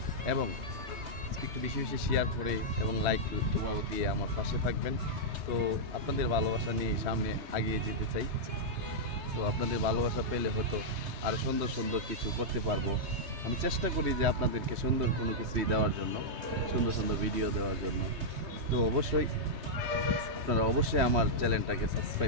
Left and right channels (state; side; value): late; left; 3.3 ms